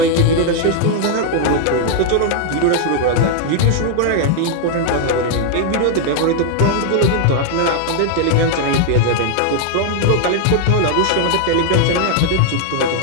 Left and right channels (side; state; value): both; different; correlation 0.00